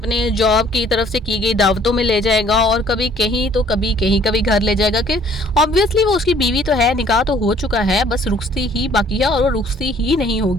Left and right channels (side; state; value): both; normal; correlation 0.58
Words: जॉब की तरफ से की गई दावतों में ले जाएगा, और कभी कहीं तो कभी कहीं, कभी घर ले जाएगा। कि ऑब्वियसली वो उसकी बीवी तो है, निकाह तो हो चुका है, बस रुखसती ही बाकी है और वो रुखसती ही नहीं